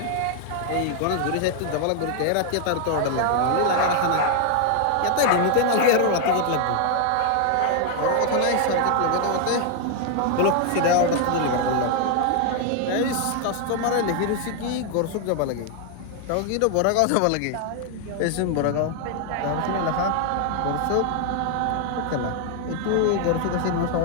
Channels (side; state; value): both; different; correlation 0.00